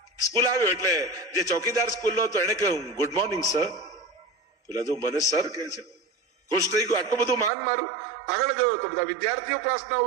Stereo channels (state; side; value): drops out; left; at 7.5 s